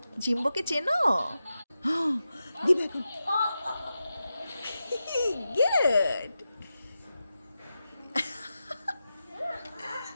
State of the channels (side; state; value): both; inverted; correlation -0.91